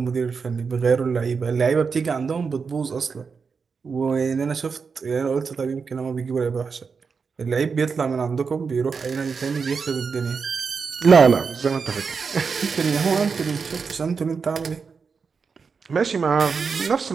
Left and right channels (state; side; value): quieter; left; 5.4 dB